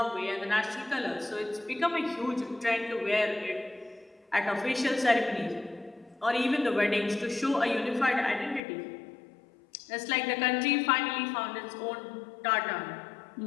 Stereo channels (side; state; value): right; drops out; at 8.6 s